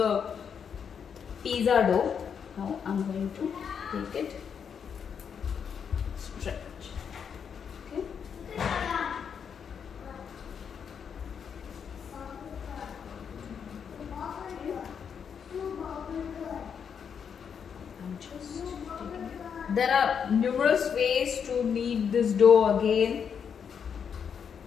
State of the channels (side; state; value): right; quieter; 7.2 dB